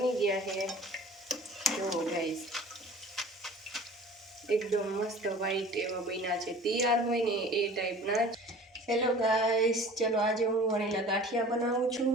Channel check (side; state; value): both; normal; correlation 0.44